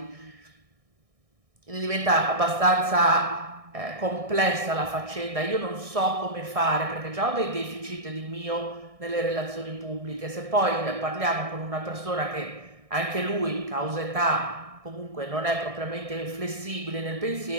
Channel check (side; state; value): left; late; 1.6 ms